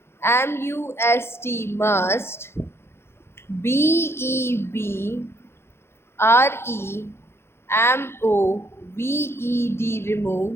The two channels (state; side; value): late; right; 0.12 ms